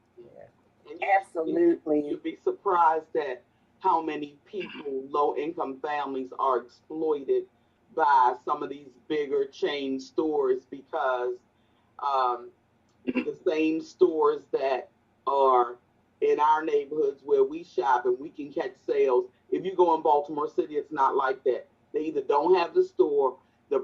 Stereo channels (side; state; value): both; identical; correlation 1.00